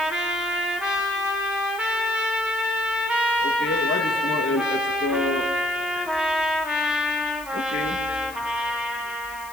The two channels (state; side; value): noise; left; hiss, 18 dB below the sound